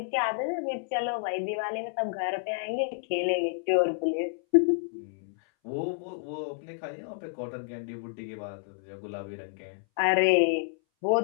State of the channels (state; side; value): silent; right; 58 dB below the other